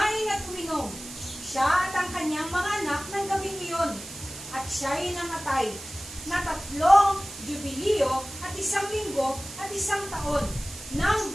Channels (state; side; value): noise; right; hiss, 13 dB below the sound